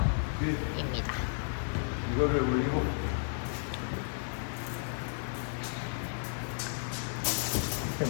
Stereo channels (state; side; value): silent; right; digital silence